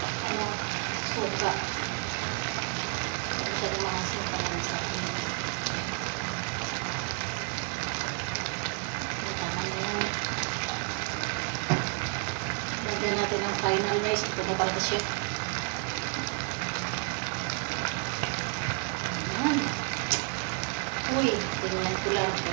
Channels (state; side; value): quieter; left; 35.0 dB